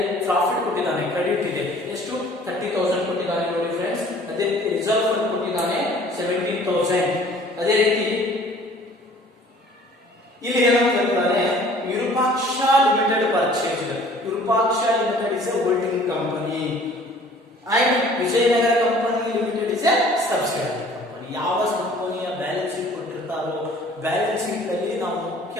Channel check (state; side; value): normal; both; correlation 0.51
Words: ಪ್ರಾಫಿಟ್ ಕೊಟ್ಟಿದ್ದಾನೆ, ಕ್ರೆಡಿಟ್ ಇದೆ, ಎಷ್ಟು 30,000 ಕೊಟ್ಟಿದ್ದಾನೆ ನೋಡಿ ಫ್ರೆಂಡ್ಸ್. ಅದೇ ರೀತಿ ರಿಸರ್ವ್ ಫಂಡ್ ಕೊಟ್ಟಿದ್ದಾನೆ 17,000. ಅದೇ ರೀತಿ ಇಲ್ಲಿ ಏನಂತ ಹೇಳ್ತಾನೆ, Virupaksha limited purchase. Virupaksha limited is A holding company and Vijayanagara company limited is A subsidiary company. ಯಾವ ಕಂಪನಿಯ ಬ್ಯಾಲೆನ್ಸ್ ಶೀಟ್ ಕೊಟ್ಟಿರ್ತಾರೋ ಬ್ಯಾಲೆನ್ಸ್ ಶೀಟ್ ಅಲ್ಲಿ ನಾವು